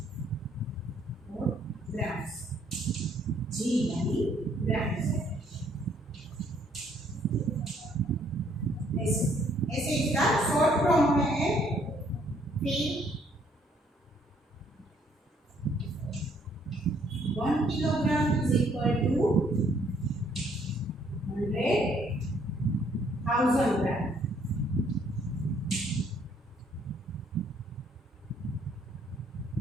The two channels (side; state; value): both; normal; correlation 0.66